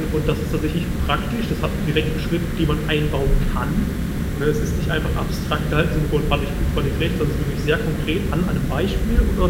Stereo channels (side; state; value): both; identical; correlation 1.00